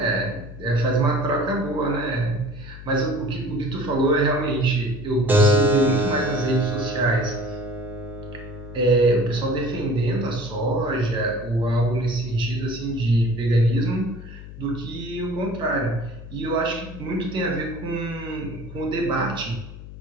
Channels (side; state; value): left; noise; hum, 14 dB below the sound